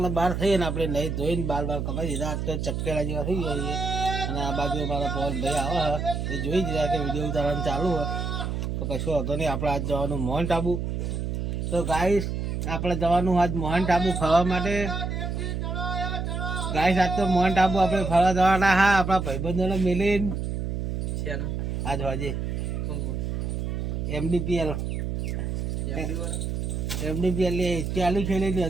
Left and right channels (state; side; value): noise; right; hum, 2 dB below the sound